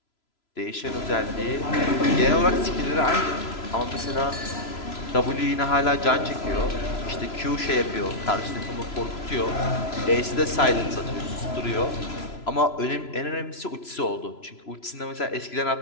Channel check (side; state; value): right; late; 3.0 ms